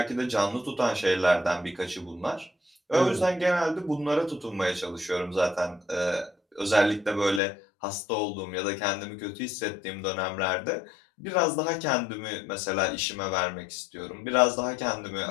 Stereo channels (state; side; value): drops out; right; at 7.4 s